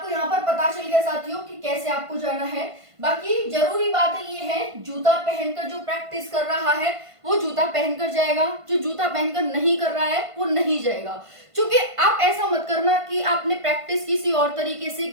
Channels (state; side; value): late; left; 1.5 ms